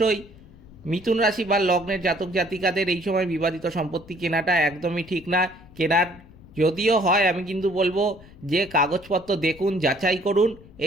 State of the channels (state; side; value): noise; left; rumble, 22 dB below the sound